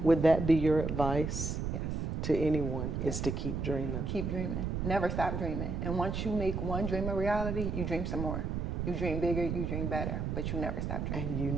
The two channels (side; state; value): right; noise; rumble, 2 dB below the sound